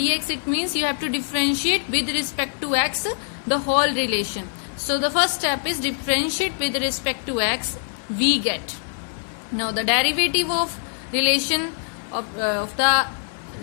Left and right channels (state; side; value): silent; right; 58 dB below the other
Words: It means you have to differentiate with respect to x the whole relation. So the first step is differentiate with respect to x. We get. Now the derivative of relation of the